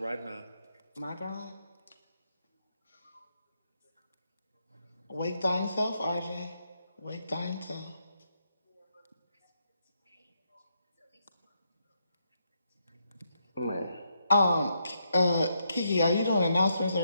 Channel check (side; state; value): both; inverted; correlation -0.79